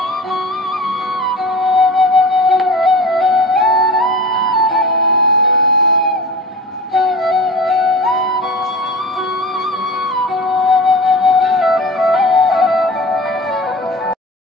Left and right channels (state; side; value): normal; both; correlation 0.34